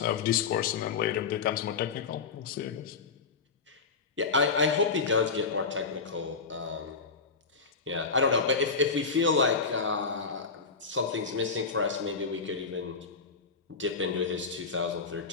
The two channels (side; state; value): right; quieter; 4.9 dB